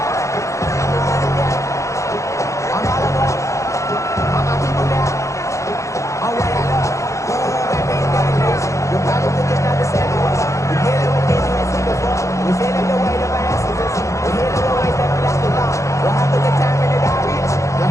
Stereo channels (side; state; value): right; late; 0.15 ms